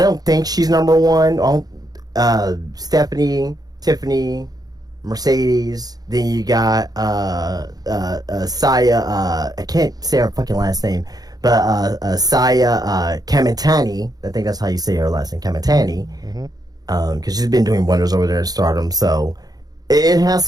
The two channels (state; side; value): late; left; 0.19 ms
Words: don't think she's number 1. Stephanie, Tiffany, Mercedes. Then you got Saya. I can't say her fucking last name, Saya Kamitani, I think that's how you say her last name, Kamitani, because she's been doing wonders over there in Stardom. So it has